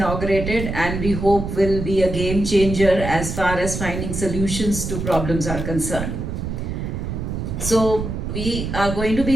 and we hope will be a game changer as far as finding solutions to problems are concerned. So we are going to be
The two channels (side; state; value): right; noise; rumble, 4 dB below the sound